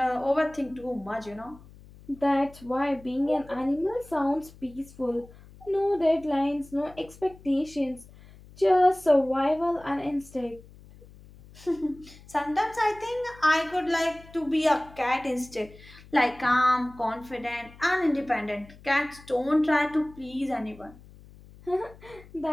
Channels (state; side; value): noise; left; hum, 22 dB below the sound